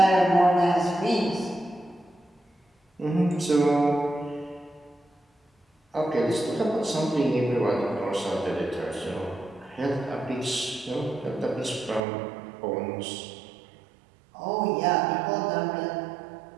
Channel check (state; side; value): drops out; left; at 12.0 s